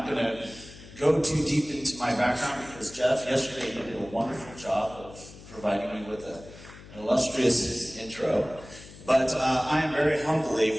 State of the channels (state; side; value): noise; left; hum, 18 dB below the sound